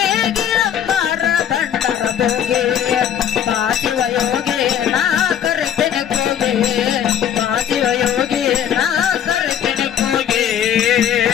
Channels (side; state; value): right; quieter; 9.6 dB